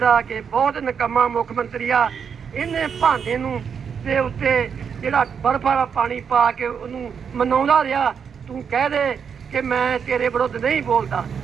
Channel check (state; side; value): quieter; left; 6.9 dB